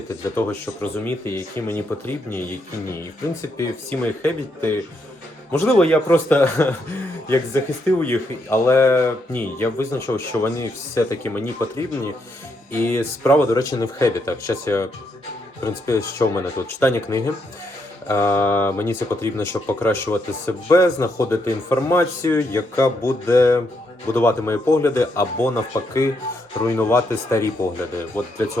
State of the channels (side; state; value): both; normal; correlation 0.78